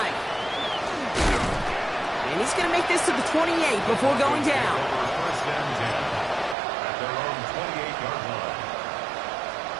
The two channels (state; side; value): drops out; left; at 6.6 s